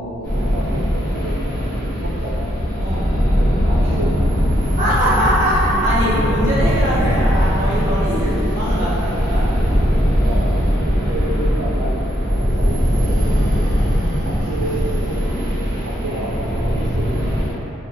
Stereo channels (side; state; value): both; normal; correlation 0.78